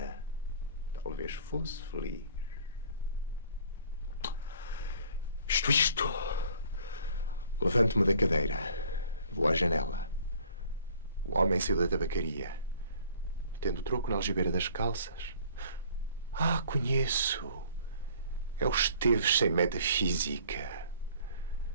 talvez fosse feliz. Isto. Levanto-me da cadeira. Vou à janela. O homem saiu da tabacaria. Tendo troco na algibeira das calças. Ah, conheço. É o Esteves sem metafísica.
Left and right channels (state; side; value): inverted; both; correlation -0.53